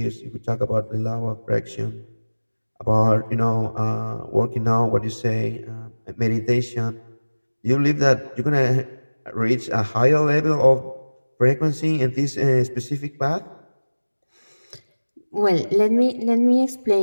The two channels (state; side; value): inverted; both; correlation -1.00